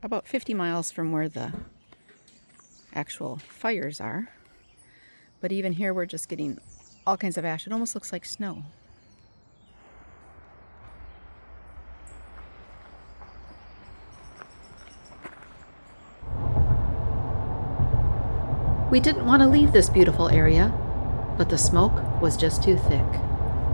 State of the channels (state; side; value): inverted; both; correlation -1.00